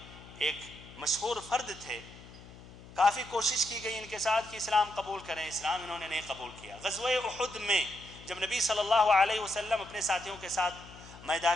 ایک مشہور فرد تھے۔ کافی کوشش کی گئی ان کے ساتھ کہ اسلام قبول کریں، اسلام انہوں نے نہیں قبول کیا۔ غزوہ احد میں جب نبی صلی اللہ علیہ وسلم اپنے ساتھیوں کے ساتھ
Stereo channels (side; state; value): left; noise; hum, 18 dB below the sound